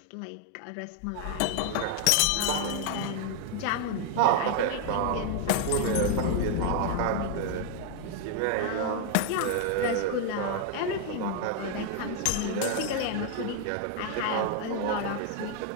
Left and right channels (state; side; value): different; both; correlation 0.00